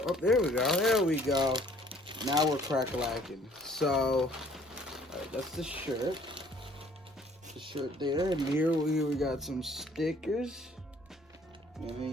go, there we go. Now we're crack-a-lacking. So, alright, that's the shirt. The shirt there, and here we got some stickers. And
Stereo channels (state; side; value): normal; both; correlation 0.58